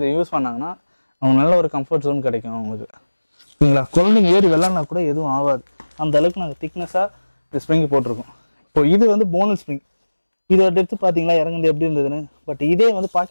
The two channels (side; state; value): both; inverted; correlation -1.00